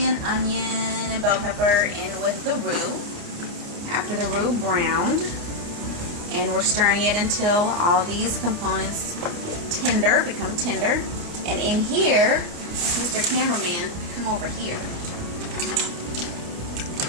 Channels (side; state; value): left; late; 29 ms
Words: and onion and bell pepper in with the roux. After the roux browned, and we're stirring it until all these components get tender, become tender. And in here, Mr. Cameraman, come over here.